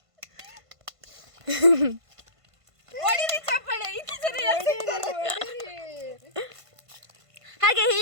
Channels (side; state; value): left; late; 1.5 ms